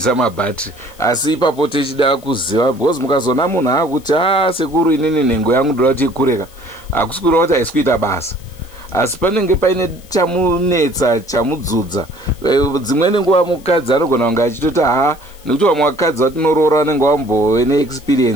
mabattery, asi ipapo tichida kuziva, because mukazona munhu akuti sekuru inini nhengo yangu ndoda kuti ikureka, hakusi kureva kuti haisi kuita basa, asi panenge paine chamunetsa chamudzudza. Dzimweni nguva mukadzi anogona kunge achitoti nekuti vamwe vakadzi vatinoroora vanenge vambove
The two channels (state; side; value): noise; left; hiss, 25 dB below the sound